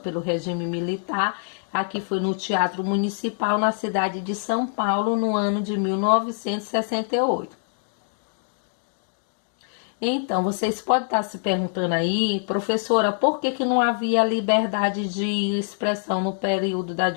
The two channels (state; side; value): silent; right; digital silence